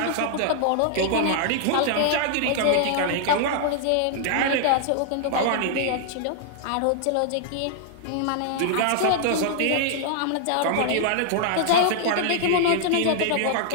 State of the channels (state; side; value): different; both; correlation -0.01